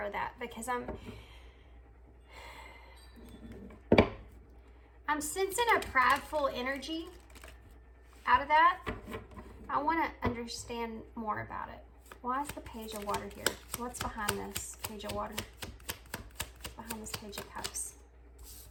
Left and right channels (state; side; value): identical; both; correlation 1.00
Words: that, because I'm sensing a prideful energy out of that. I want to understand more about it. Why is the Page of Water here? What's behind this Page of Water? Behind this Page of Cups.